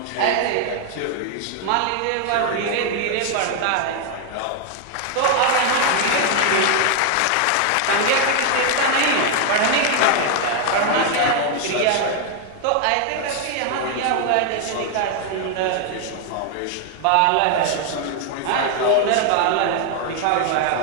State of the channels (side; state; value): both; different; correlation 0.00